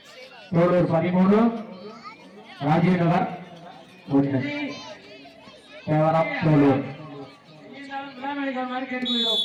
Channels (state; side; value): identical; both; correlation 1.00